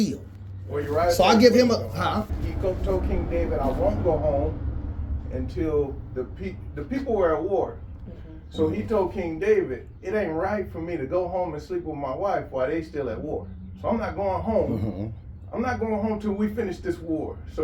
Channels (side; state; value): both; identical; correlation 1.00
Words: Well, you're right. So I give him a. He told King David, I won't go home until the people were at war. So he told King David, it ain't right for me to go home and sleep with my wife while they still at war. So I'm not going home. I'm not going home till we finish this war.